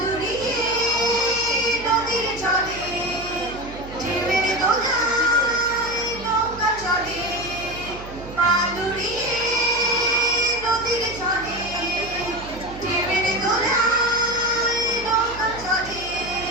নদীর জলে ঢেউয়ের দোলায় নৌকা চলে, পাদুরিয়ে নদীর জলে ঢেউয়ের দোলায় নৌকা চলে।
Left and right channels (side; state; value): right; noise; hum, 15 dB below the sound